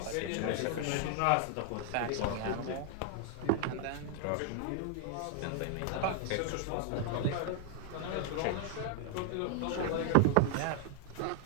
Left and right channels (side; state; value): both; different; correlation 0.00